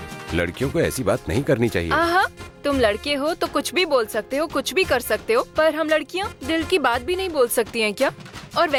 लड़कियों को ऐसी बात नहीं करनी चाहिए। आहा, तुम लड़के हो तो कुछ भी बोल सकते हो, कुछ भी कर सकते हो, पर हम लड़कियाँ दिल की बात भी नहीं बोल सकती हैं क्या? और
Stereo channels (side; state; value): both; identical; correlation 1.00